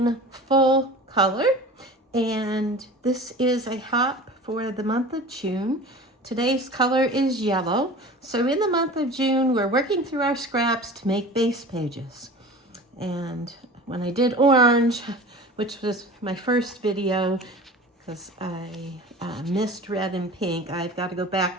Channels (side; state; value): both; normal; correlation 0.38